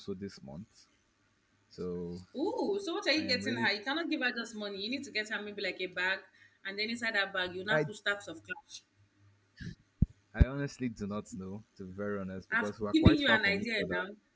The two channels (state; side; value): identical; both; correlation 1.00